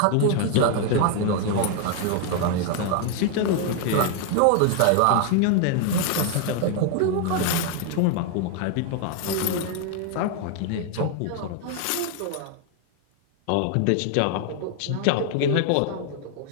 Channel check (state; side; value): different; both; correlation 0.00